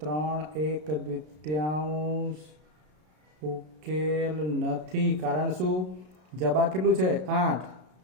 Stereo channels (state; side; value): late; left; 33 ms